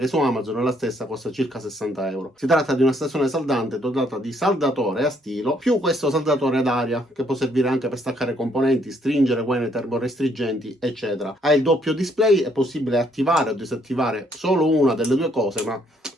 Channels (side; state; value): both; normal; correlation 0.68